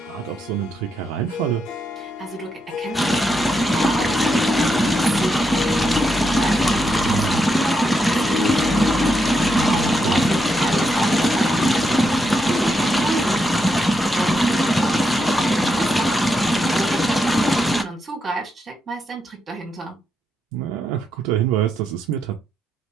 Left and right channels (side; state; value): both; normal; correlation 0.82